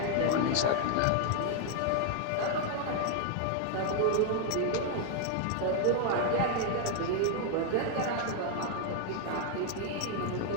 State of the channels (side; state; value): both; different; correlation 0.00